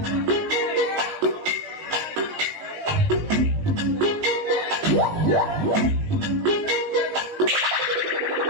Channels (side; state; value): left; late; 19 ms